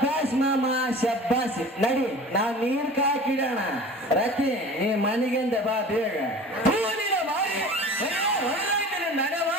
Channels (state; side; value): normal; both; correlation 0.40